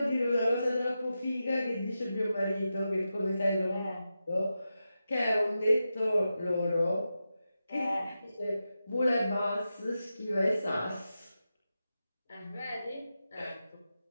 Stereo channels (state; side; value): inverted; both; correlation -0.90